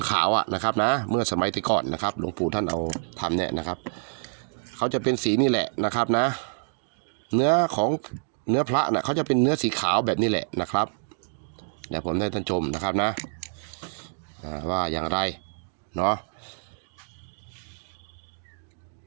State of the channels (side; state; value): left; silent; digital silence